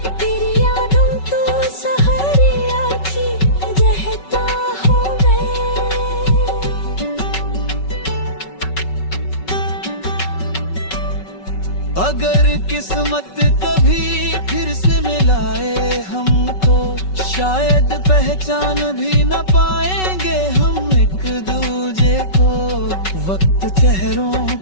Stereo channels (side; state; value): right; late; 5.3 ms